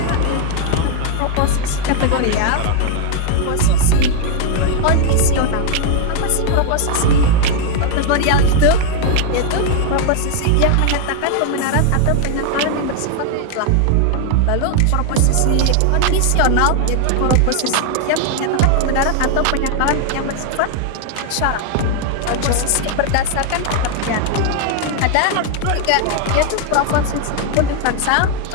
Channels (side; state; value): both; different; correlation 0.00